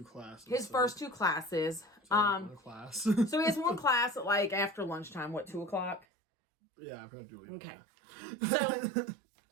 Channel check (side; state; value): left; drops out; at 6.1 s